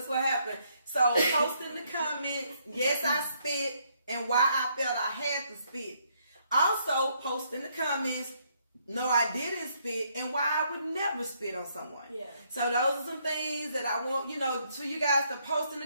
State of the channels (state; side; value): inverted; both; correlation -0.71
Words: what happened. So post in the comments, yes, I spit, and why I felt I had to spit. Also post in the comments, no, I didn't spit, and why I would never spit on someone. Yeah. So those are some things that I want, you know, for you guys to post in